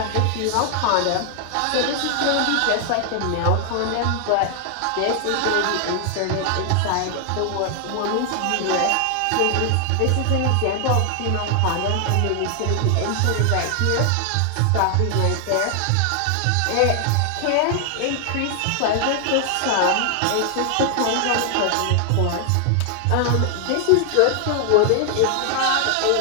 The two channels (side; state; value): both; different; correlation 0.00